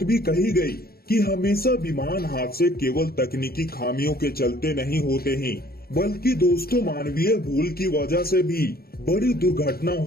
भी कही गई कि हमेशा विमान हादसे केवल तकनीकी खामियों के चलते नहीं होते हैं, बल्कि दोस्तों मानवीय भूल की वजह से भी बड़ी दुर्घटना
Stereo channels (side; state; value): right; late; 0.44 ms